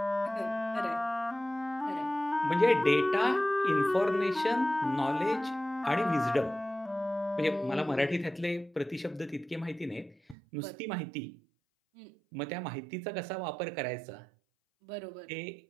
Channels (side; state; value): left; drops out; at 10.4 s